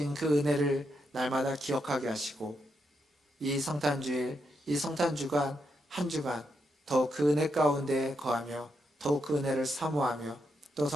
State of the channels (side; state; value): both; normal; correlation 0.81